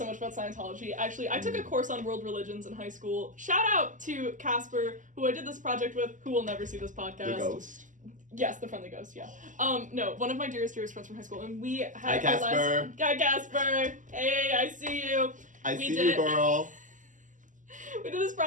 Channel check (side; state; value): left; late; 0.37 ms